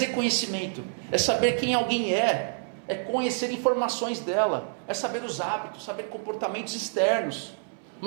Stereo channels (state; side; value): silent; left; 58 dB below the other